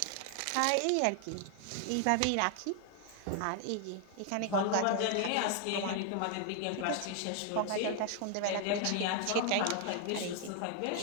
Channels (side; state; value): both; different; correlation 0.00